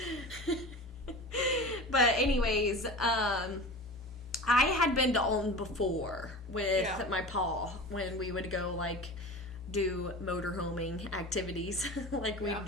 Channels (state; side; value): normal; both; correlation 0.34